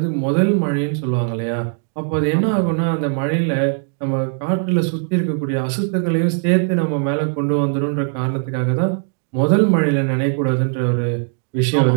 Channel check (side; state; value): left; silent; 58 dB below the other